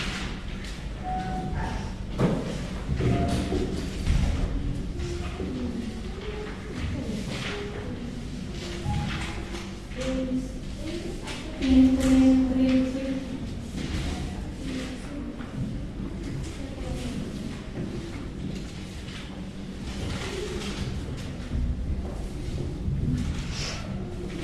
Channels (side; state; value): both; identical; correlation 1.00